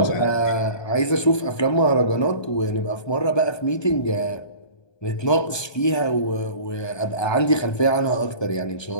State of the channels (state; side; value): late; right; 1.2 ms